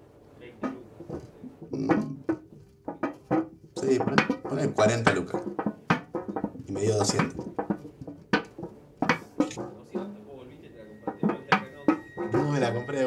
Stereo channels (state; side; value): identical; both; correlation 1.00